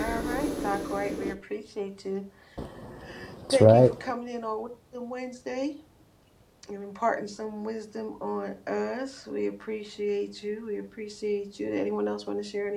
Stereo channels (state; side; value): identical; both; correlation 1.00